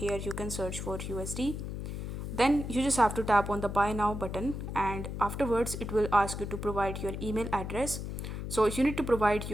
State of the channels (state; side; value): noise; left; hum, 6 dB below the sound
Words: you can search for USD. Then you just have to tap on the buy now button, and afterwards it will ask you to provide your email address. So you need to provide